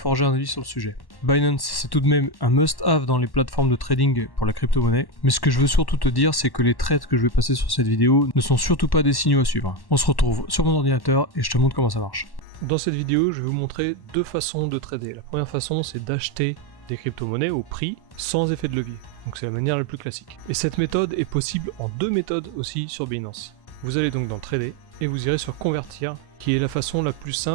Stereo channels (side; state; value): right; late; 1.1 ms